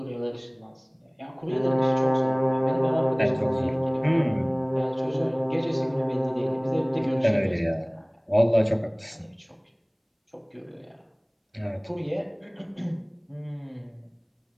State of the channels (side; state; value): both; identical; correlation 1.00